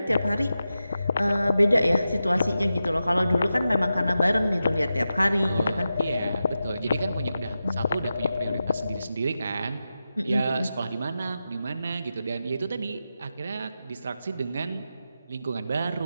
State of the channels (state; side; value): inverted; both; correlation -0.91